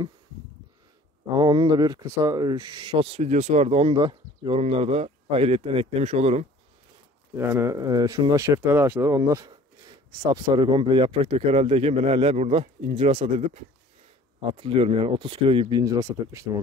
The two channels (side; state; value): both; normal; correlation 0.50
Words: Ama onun da bir kısa shots videosu vardı. Onu da yorumlarda ayrıyetten eklemiş olurum. Yani şunlar şeftali ağaçları. Onlar sapsarı, komple yaprak döker haldeyken ben hala burada incir hasat edip hatırlıyorum, yani 30 kilo gibi bir incir hasat etmiştim o